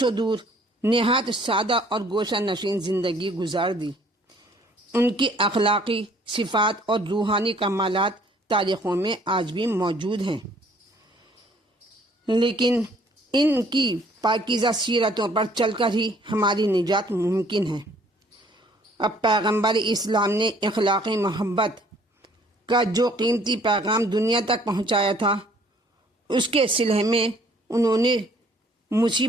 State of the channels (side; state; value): both; normal; correlation 0.59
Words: دور نہایت سادہ اور گوشہ نشین زندگی گزار دی۔ ان کی اخلاقی صفات اور روحانی کمالات تاریخوں میں آج بھی موجود ہیں، لیکن ان کی پاکیزہ سیرتوں پر چل کر ہی ہماری نجات ممکن ہے۔ اب پیغمبر اسلام نے اخلاقی محبت کا جو قیمتی پیغام دنیا تک پہنچایا تھا، اس کے صلح میں انہوں نے